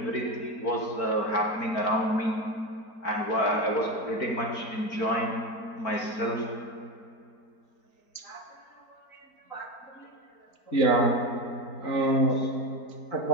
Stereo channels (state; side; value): late; right; 4.4 ms